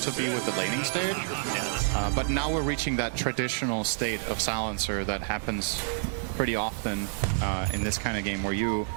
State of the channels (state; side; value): silent; left; digital silence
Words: to be with the laning stage. But now we're reaching that traditional state of Silencer that happens pretty often in this kind of game, where you